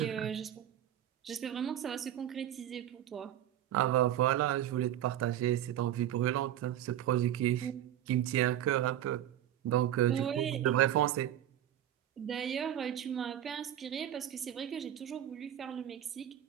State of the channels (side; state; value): left; quieter; 11.6 dB